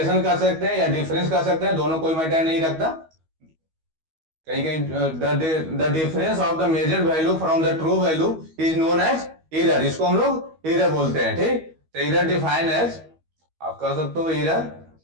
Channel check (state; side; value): late; left; 12 ms